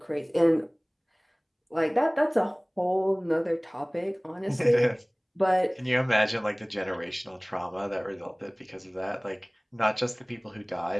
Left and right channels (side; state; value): both; identical; correlation 1.00